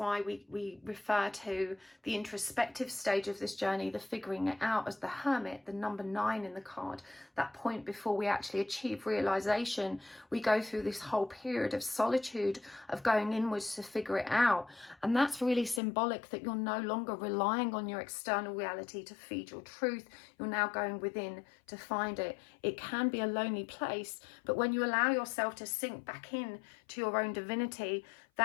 we refer to the introspective stage of this journey, the figuring it out, as the hermit, the number 9 in the card, that point before we actually achieve realization. We go through this whole period of solitude, of going inwards to figure it out. And that's really symbolic that you're no longer relying on your external reality to feed your truth. You're now going within to find it. It can be a lonely place, but when you allow yourself to sink back in to your own divinity,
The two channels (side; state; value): right; drops out; at 15.8 s